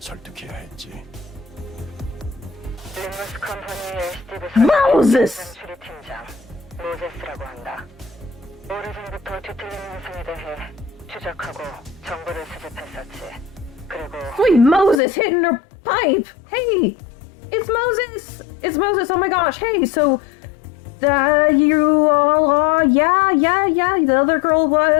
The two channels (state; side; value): drops out; right; at 15.0 s